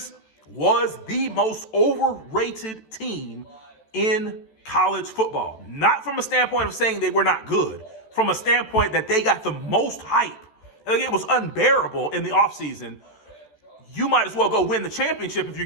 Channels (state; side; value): late; right; 14 ms